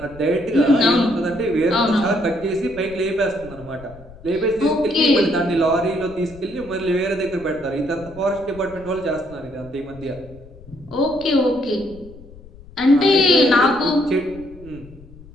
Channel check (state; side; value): noise; left; rumble, 20 dB below the sound